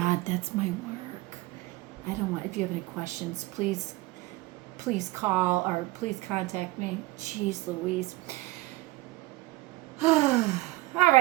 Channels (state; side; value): quieter; left; 19.7 dB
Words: that's my work. If you have any questions, please call or please contact me. Jeez Louise. All